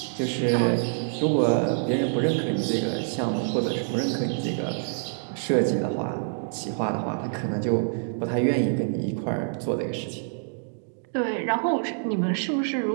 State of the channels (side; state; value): left; silent; digital silence